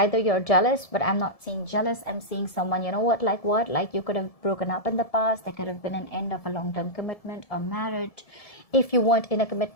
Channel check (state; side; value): late; right; 1.7 ms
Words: you're jealous, but I'm not seeing jealous. I'm seeing someone, you know what? Like you could have broken up in the past. There could have been an end of a long-term commitment or marriage. If you weren't in a